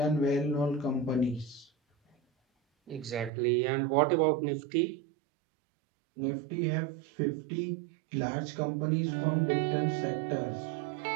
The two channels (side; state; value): left; drops out; at 3.3 s